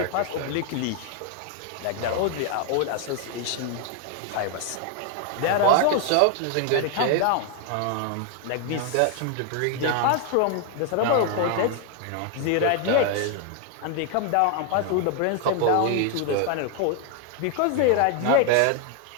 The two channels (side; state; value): both; different; correlation 0.01